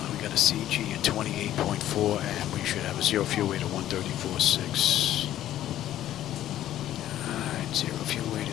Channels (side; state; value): right; quieter; 12.6 dB